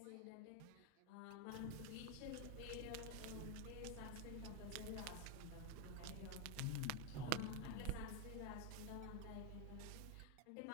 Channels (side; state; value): both; different; correlation 0.01